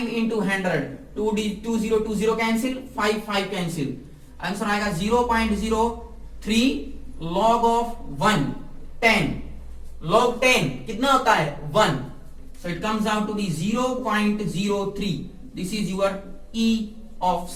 into 100, 20 cancel, 5 cancel, answer आएगा 0.03 लॉग ऑफ 1, 10 लॉग 10 कितना होता है 1, so it comes out to be 0.03, this is your E of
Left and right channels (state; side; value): identical; both; correlation 1.00